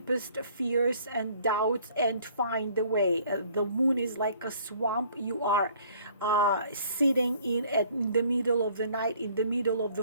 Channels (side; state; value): both; inverted; correlation -0.57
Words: fears and doubts, and find the way. The moon is like a swamp. You are sitting in the middle of the night, in the middle of